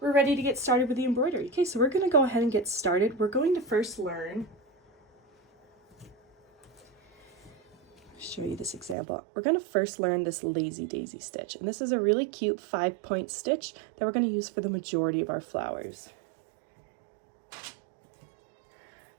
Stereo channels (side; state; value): left; drops out; at 9.0 s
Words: We're ready to get started with the embroidery. Okay, so we're going to go ahead and get started. We're going to first learn, show you this example. We're going to first learn this lazy daisy stitch, and this is a really cute 5-point stitch that we're going to use for the majority of our flowers.